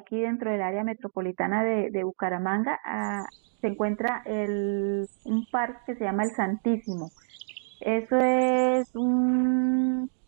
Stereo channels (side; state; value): left; silent; digital silence